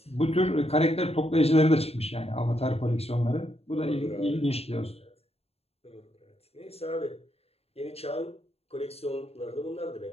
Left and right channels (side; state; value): right; late; 0.29 ms